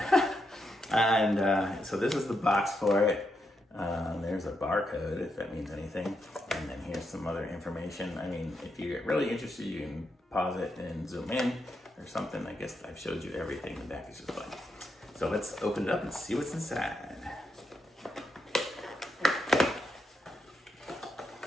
And so this is the box for it. There's a barcode, if that means anything. And then here's some other information. I mean, if you get really interested, you can pause it and zoom in or something. I guess I've showed you everything. The back is just fun. So let's open it up and see what's inside.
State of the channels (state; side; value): normal; both; correlation 0.83